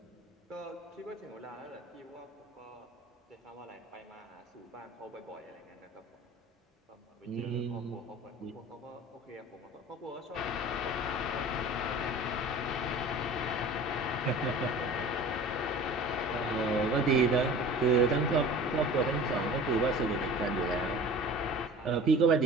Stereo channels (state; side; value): normal; both; correlation 0.41